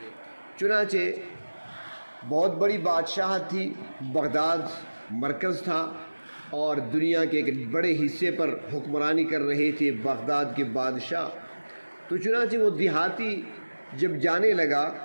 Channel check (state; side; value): inverted; both; correlation -1.00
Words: چنانچہ بہت بڑی بادشاہت تھی، بغداد مرکز تھا اور دنیا کے ایک بڑے حصے پر حکمرانی کر رہے تھے بغداد کے بادشاہ۔ تو چنانچہ وہ دیہاتی جب جانے لگا